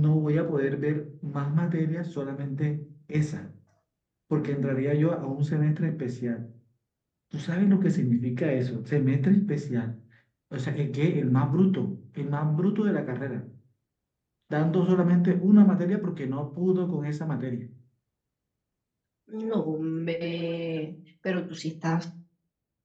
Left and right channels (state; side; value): identical; both; correlation 1.00